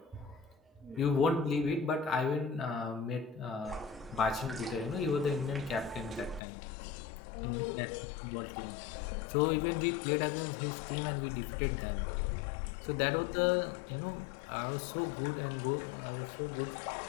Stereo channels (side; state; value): right; drops out; at 6.4 s